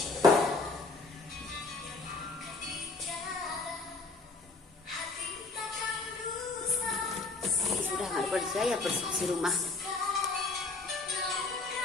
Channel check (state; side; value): quieter; right; 3.8 dB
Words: Sudah nggak kerja ya, bersih rumah.